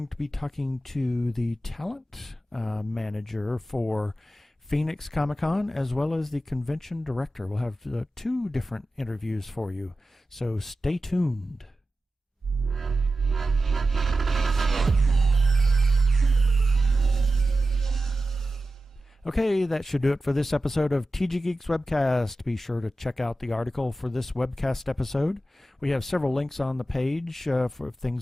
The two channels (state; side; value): normal; both; correlation 0.93